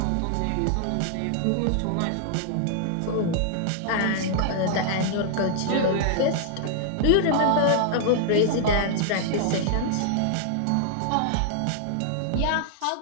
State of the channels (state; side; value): different; both; correlation -0.01